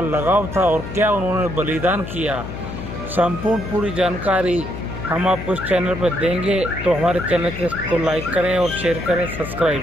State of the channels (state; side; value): noise; left; hum, 9 dB below the sound